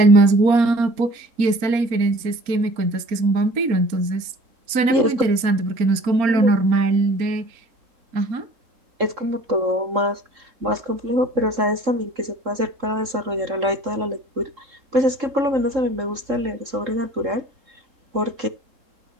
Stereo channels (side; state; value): left; late; 3.7 ms